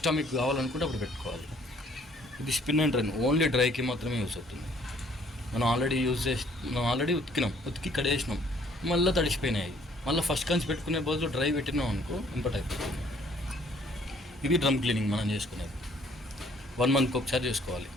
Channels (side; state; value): both; normal; correlation 0.60